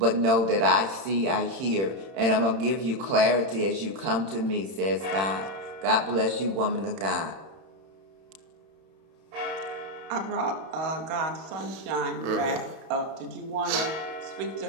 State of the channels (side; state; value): left; late; 31 ms